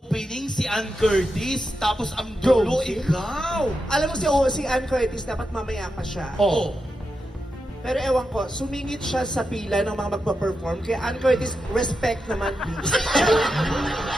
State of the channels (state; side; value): normal; both; correlation 0.88